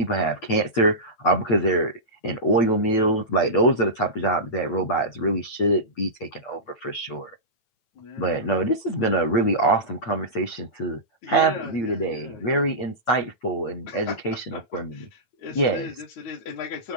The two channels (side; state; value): right; late; 9.0 ms